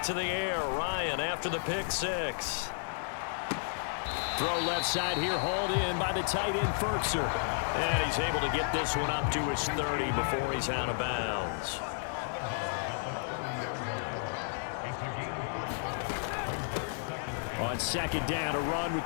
to the air. Ryan after the pick 6. Throw left side here, hauled in by the tight end, Ferkser. And he's able to get this one up to his 30 before he's out of bounds. On 2nd down, a run with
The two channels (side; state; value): right; silent; digital silence